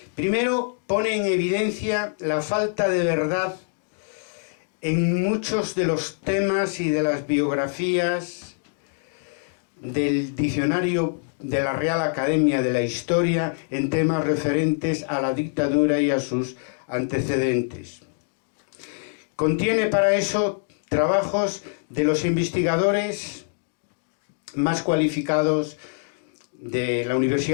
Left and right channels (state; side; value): silent; right; digital silence